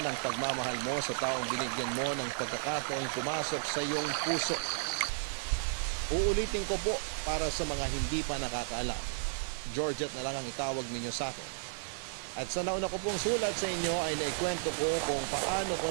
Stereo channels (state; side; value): silent; left; 55 dB below the other